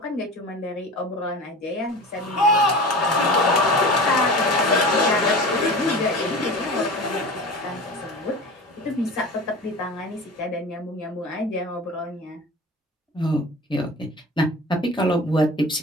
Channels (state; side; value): normal; both; correlation 0.35